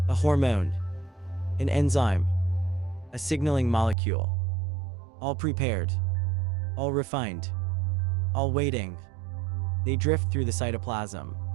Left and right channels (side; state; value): left; drops out; at 4.0 s